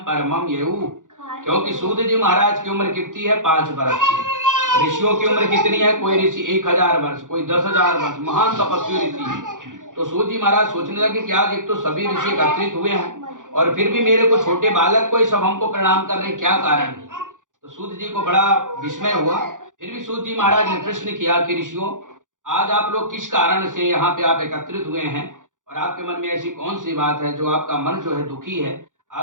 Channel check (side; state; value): left; late; 0.88 ms